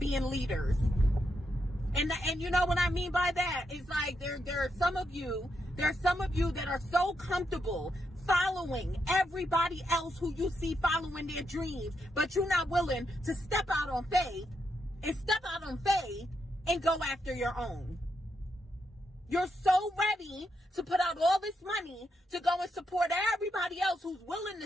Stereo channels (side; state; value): both; normal; correlation 0.82